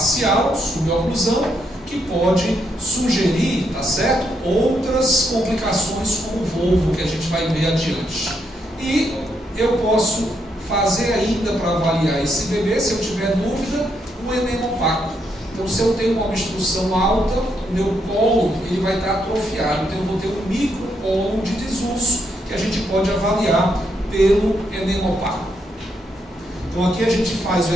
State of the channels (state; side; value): normal; both; correlation 0.77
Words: suboclusão, que pode sugerir, tá certo, outras complicações como o volvo, que a gente vai ver adiante. E eu posso fazer ainda para avaliar esse bebê, se eu tiver dúvida, um enema opaco. Então, se eu tenho uma obstrução alta, o meu colo ele vai estar atrofiado. Então, eu vou ter um microcolo de desuso, que a gente pode avaliar pelo enema opaco. Então, aqui a gente faz o